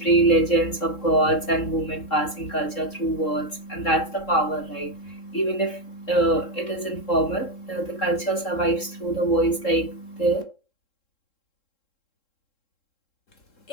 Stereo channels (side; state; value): right; late; 3.7 ms